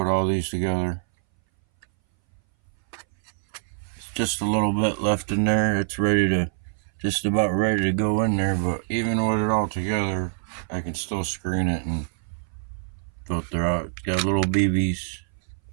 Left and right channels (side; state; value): left; silent; 60 dB below the other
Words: all these together. It's just a little bit left in there. It's just about ready to go in there, but even with it all together, I can still screen it and filter out. It's got little BBs.